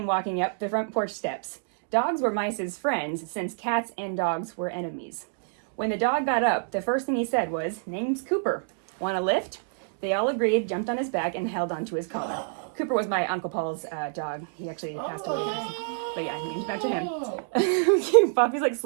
walking up the front porch steps. Dogs were mice's friends, since cats and dogs were enemies. When the dog got up, the first thing he said was, "Name's Cooper. Want a lift?" They all agreed, jumped on his back, and held onto his collar. Cooper was my Uncle Paul's dog. He actually passed away. But yeah, named after him. Poppy's like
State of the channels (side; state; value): left; silent; digital silence